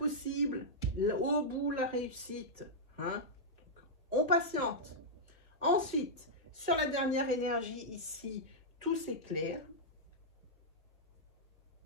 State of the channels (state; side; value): normal; both; correlation -0.08